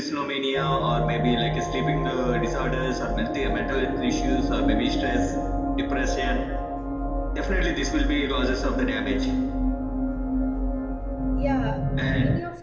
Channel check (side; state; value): both; identical; correlation 1.00